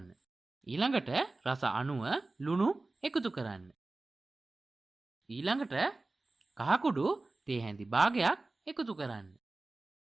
ඊළඟට රස අණුව ලුණු එකතු කරන්න. ඊළඟට කහකුඩු තේ හැඳි භාගයක් එකතු කරන්න.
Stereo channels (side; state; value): left; quieter; 3.2 dB